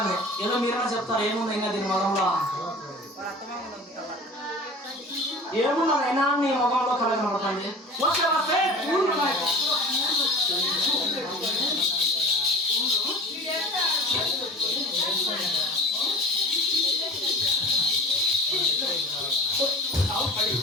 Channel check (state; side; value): normal; both; correlation 0.38